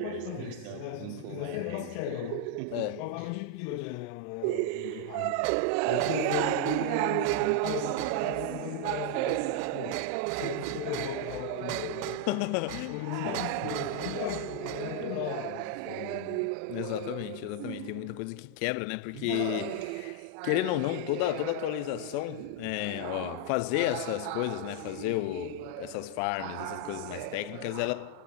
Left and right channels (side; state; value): both; different; correlation 0.00